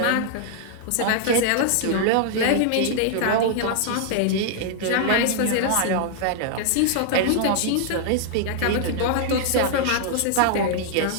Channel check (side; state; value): both; different; correlation -0.01